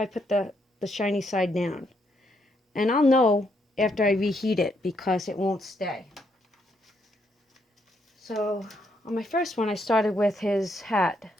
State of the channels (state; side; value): normal; both; correlation 0.75